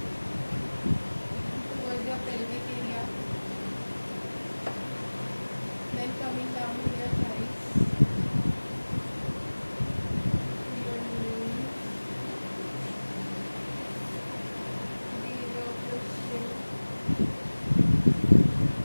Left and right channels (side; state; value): both; inverted; correlation -1.00